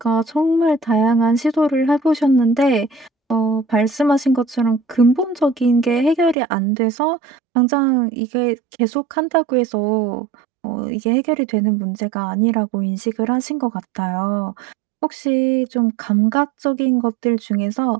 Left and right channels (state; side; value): drops out; left; at 6.4 s